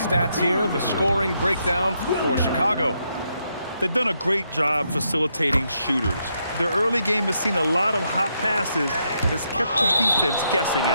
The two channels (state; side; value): inverted; both; correlation -0.78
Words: here. The scoring breakdown for Chicago. They've done a great job facilitating shooters. Their early game has seen a lot of hot passes and has kept the defense guessing